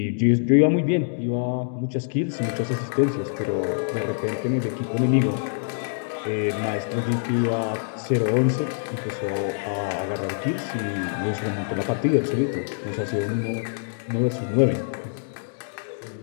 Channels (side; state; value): right; silent; digital silence